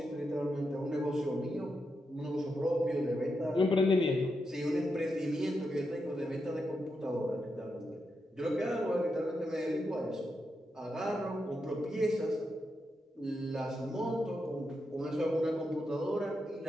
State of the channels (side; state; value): both; normal; correlation 0.85